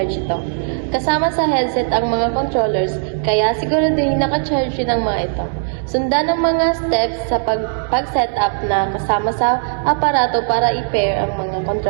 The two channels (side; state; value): left; silent; digital silence